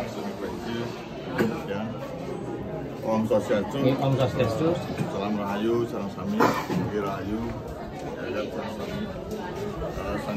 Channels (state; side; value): identical; both; correlation 1.00